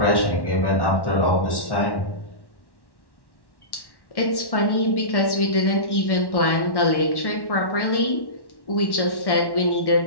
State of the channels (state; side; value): late; right; 1.1 ms